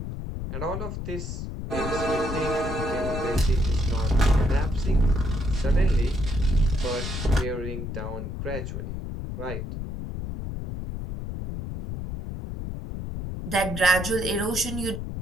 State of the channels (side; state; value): left; noise; rumble, 6 dB below the sound